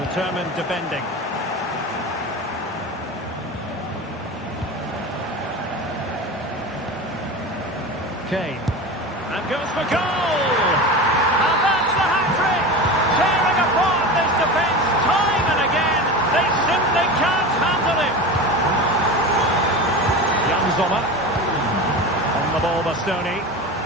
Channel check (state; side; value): normal; both; correlation 0.28